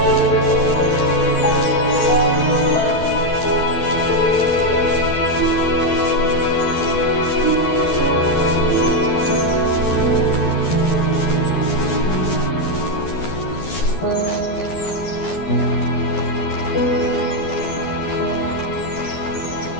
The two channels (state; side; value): late; right; 12 ms